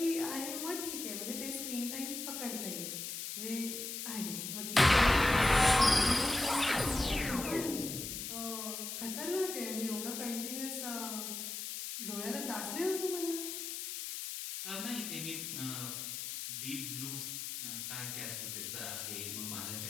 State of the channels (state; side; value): noise; left; hiss, 5 dB below the sound